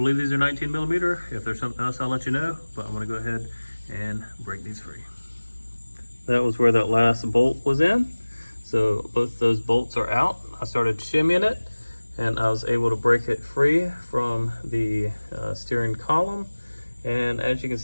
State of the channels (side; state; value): both; inverted; correlation -1.00